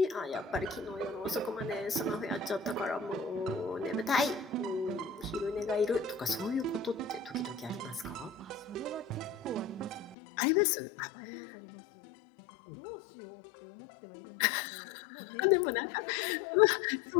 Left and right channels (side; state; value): right; drops out; at 10.2 s